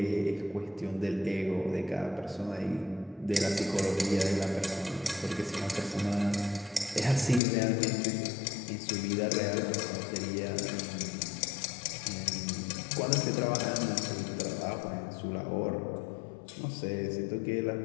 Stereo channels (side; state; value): right; drops out; at 7.4 s